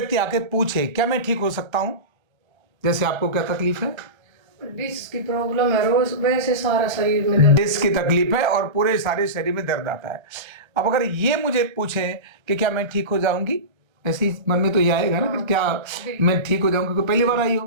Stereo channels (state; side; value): late; left; 1.3 ms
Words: आके पूछे क्या मैं ठीक हो सकता हूं, जैसे आपको क्या तकलीफ है? डिस्क की प्रॉब्लम है, रोज वैसे सारा शरीर में दर्द। डिस्क की तकलीफ है और पूरे सारे शरीर में दर्द आता है। अब अगर ये मुझे पूछें कि क्या मैं ठीक हो जाऊंगी, ऐसे ही मन में तो ये आएगा ना कि क्या मैं ठीक हो जाऊंगी, क्योंकि पहली बार आई हो,